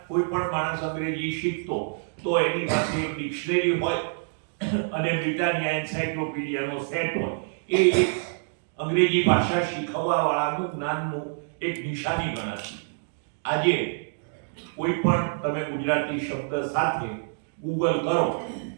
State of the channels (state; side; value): silent; left; digital silence